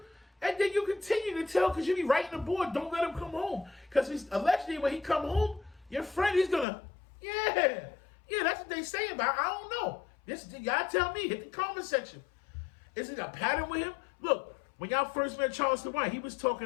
And then you continue to tell because you be writing the board, don't let him come home. Because allegedly when he come home, your friend, he's gonna, yeah, that's what they say about. I don't know. Y'all tell me, hit the comment section. Is it a pattern with him? Look, when y'all first met Charleston White, he was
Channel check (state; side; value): drops out; right; at 6.7 s